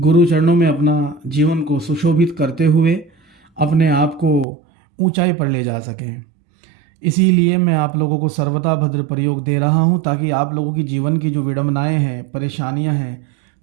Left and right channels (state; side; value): drops out; left; at 4.5 s